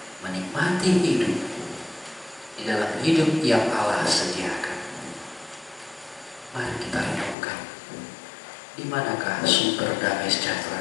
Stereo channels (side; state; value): right; drops out; at 7.4 s